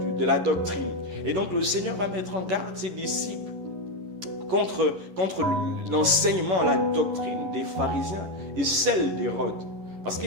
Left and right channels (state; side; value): late; left; 11 ms